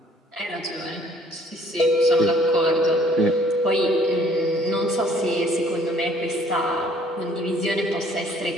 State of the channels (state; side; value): normal; both; correlation 0.59